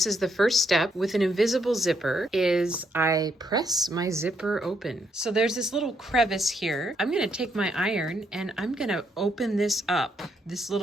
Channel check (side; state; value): both; normal; correlation 0.75